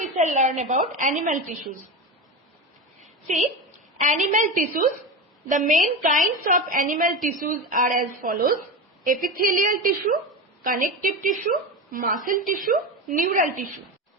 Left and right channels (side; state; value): both; normal; correlation 0.21